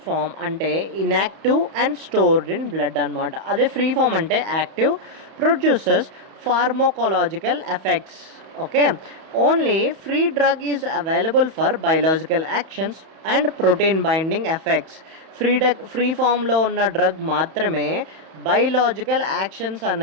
form అంటే inactive and stored in blood అనమాట. అదే ఫ్రీ ఫామ్ అంటే active, produces pharmacological effects. Okay, only free drug is available for biological actions and protein binding effects. Free ఫామ్లో ఉన్న drug మాత్రమే biological actions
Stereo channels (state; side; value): late; left; 31 ms